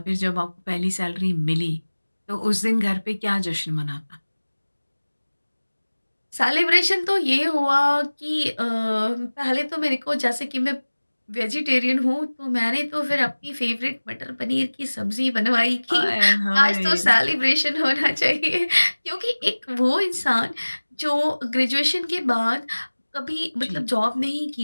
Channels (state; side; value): inverted; both; correlation -1.00